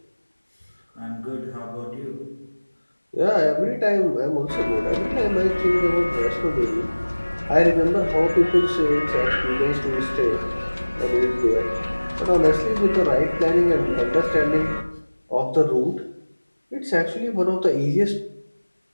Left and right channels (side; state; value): both; inverted; correlation -1.00